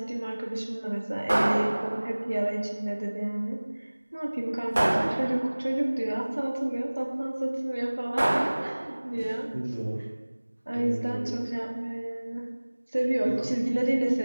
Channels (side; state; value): both; inverted; correlation -1.00